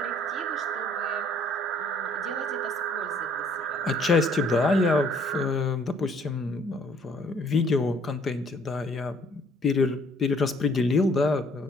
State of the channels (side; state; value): both; normal; correlation 0.61